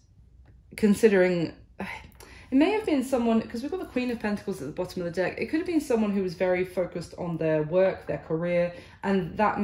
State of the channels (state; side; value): identical; both; correlation 1.00